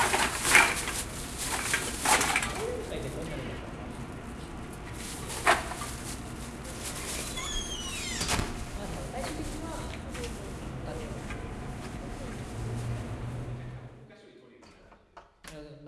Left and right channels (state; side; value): identical; both; correlation 1.00